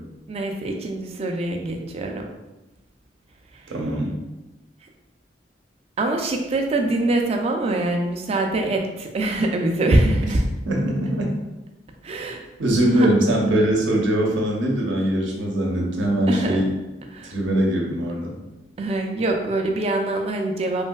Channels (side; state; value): both; normal; correlation 0.68